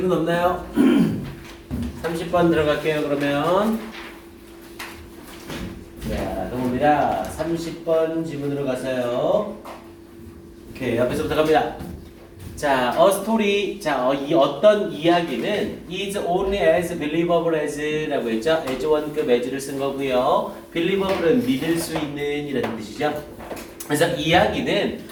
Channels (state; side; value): identical; both; correlation 1.00